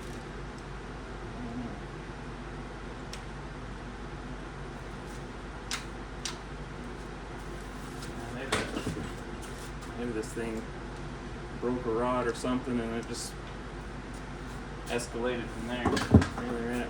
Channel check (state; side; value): identical; both; correlation 1.00